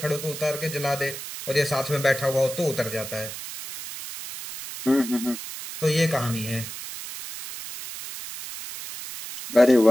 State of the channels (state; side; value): noise; right; hiss, 10 dB below the sound